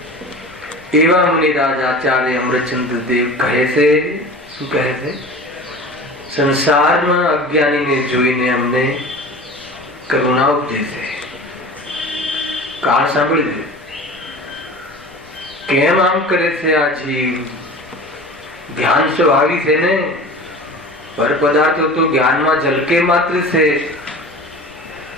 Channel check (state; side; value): noise; left; rumble, 29 dB below the sound